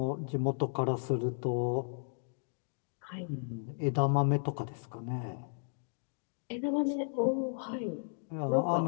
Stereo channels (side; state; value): right; silent; digital silence